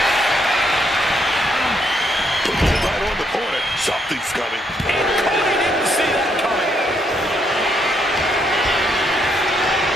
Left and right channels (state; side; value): normal; both; correlation 0.74